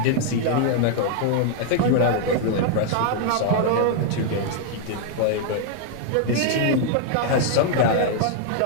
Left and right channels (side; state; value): both; different; correlation 0.00